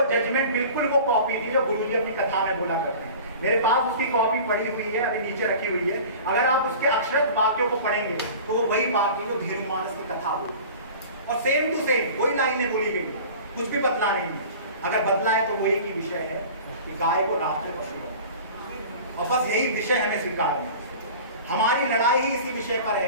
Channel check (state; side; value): inverted; both; correlation -0.40